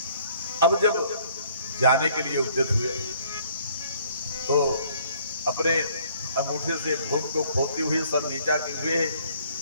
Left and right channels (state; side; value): inverted; both; correlation -0.60